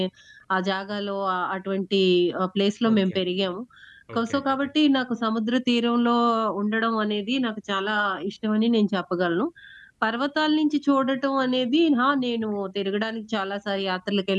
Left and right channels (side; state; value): both; identical; correlation 1.00